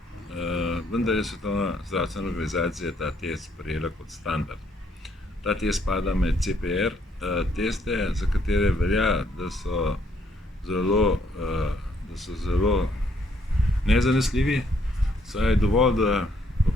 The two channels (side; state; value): both; normal; correlation 0.69